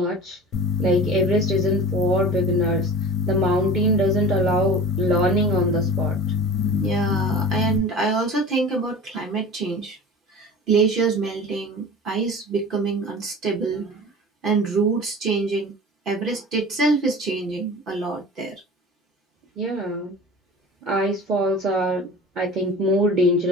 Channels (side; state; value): both; normal; correlation 0.37